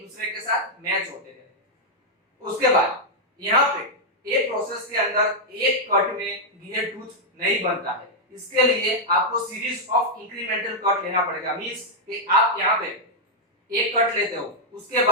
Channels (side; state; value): both; normal; correlation -0.04